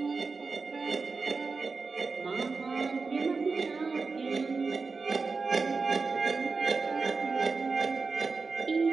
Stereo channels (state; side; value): quieter; left; 4.4 dB